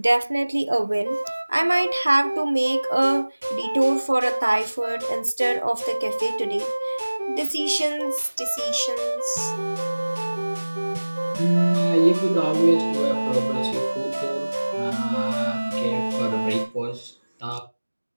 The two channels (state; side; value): inverted; both; correlation -1.00